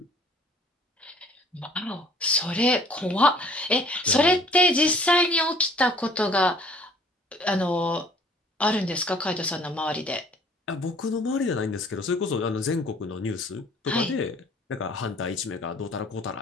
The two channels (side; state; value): both; normal; correlation 0.55